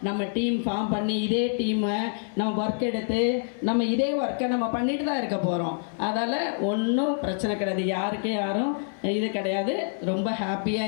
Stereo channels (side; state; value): right; silent; digital silence